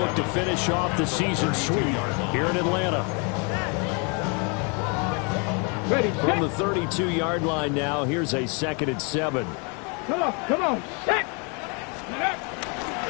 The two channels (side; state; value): right; quieter; 34.4 dB